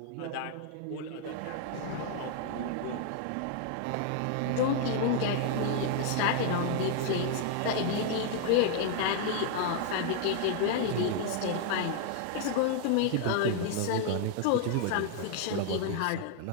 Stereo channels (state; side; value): different; both; correlation 0.00